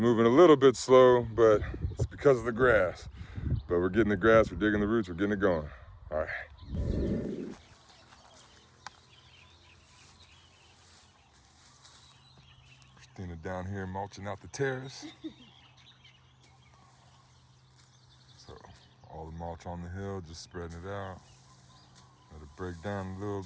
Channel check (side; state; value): both; identical; correlation 1.00